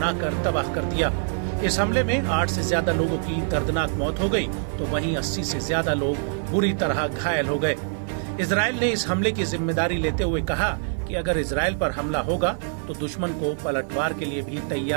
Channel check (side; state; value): left; silent; 55 dB below the other